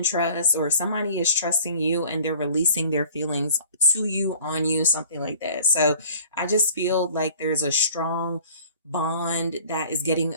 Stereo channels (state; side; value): inverted; both; correlation -0.49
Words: trust, or somebody is trusting you and they're releasing their feelings to you, on you, something like that. So I just feel like there's a strong bond that is getting